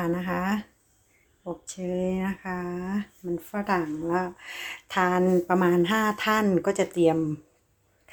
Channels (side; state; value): both; identical; correlation 1.00